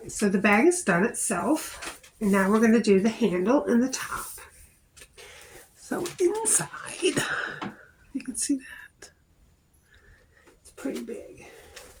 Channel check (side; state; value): both; identical; correlation 1.00